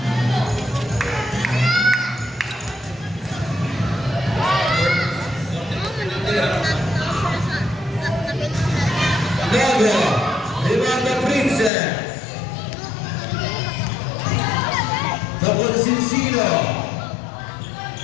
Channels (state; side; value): drops out; right; at 11.7 s